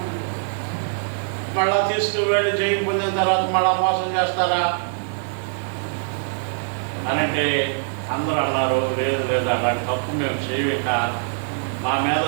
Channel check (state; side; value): silent; left; 57 dB below the other